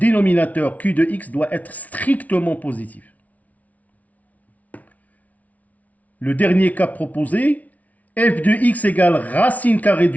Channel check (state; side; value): late; right; 0.071 ms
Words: q de x doit être strictement positif. Le dernier cas proposé, f de x égale racine carrée